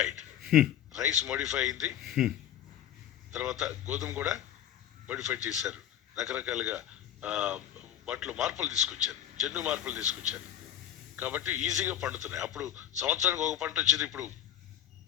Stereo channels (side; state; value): right; quieter; 10.7 dB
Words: రైస్ మోడిఫై అయింది, తర్వాత గోధుమ కూడా మోడిఫై చేశారు. రకరకాలుగా వాటిలో మార్పులు తీసుకొచ్చారు, జన్యు మార్పులు తీసుకొచ్చారు. కాబట్టి ఈజీగా పండుతున్నాయి. అప్పుడు సంవత్సరానికి ఒక పంట వచ్చేది, ఇప్పుడు